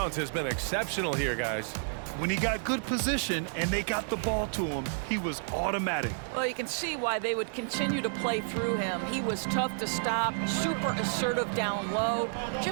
has been exceptional here, guys. When he got good position and they got the ball to him, he was automatic. Well, you can see why they would continue to play through him. He was tough to stop, super assertive down low,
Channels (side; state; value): left; silent; digital silence